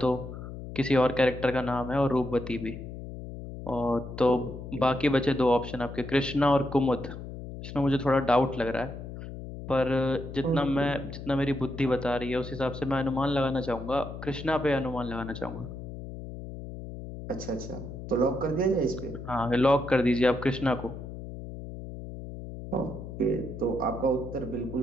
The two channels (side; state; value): left; noise; hum, 10 dB below the sound